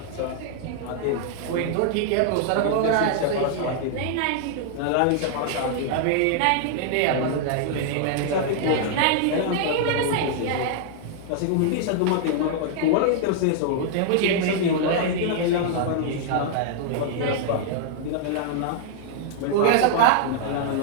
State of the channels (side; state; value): both; different; correlation -0.01